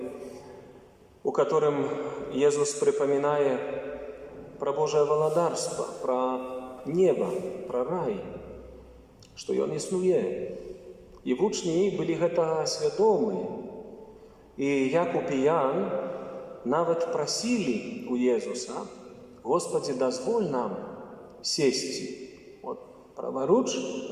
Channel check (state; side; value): identical; both; correlation 1.00